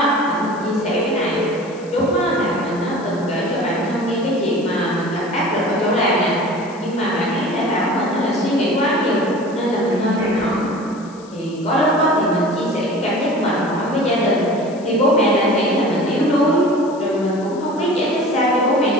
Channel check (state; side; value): noise; left; hiss, 25 dB below the sound